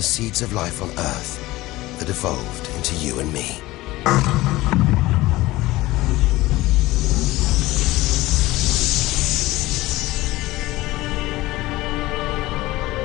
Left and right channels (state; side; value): quieter; right; 18.6 dB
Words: seeds of life on Earth that evolved into you and me.